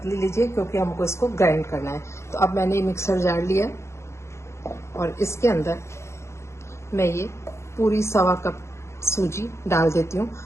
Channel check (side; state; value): right; late; 0.13 ms